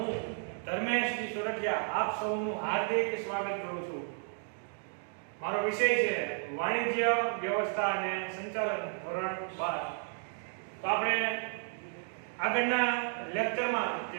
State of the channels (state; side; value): silent; left; 55 dB below the other